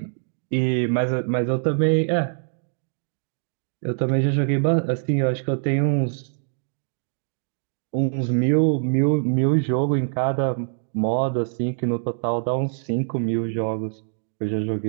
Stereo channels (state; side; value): silent; left; digital silence